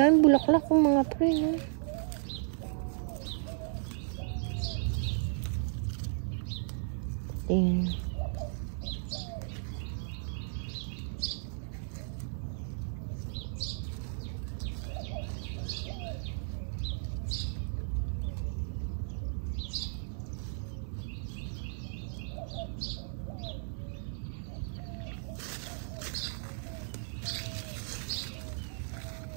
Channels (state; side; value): silent; left; 55 dB below the other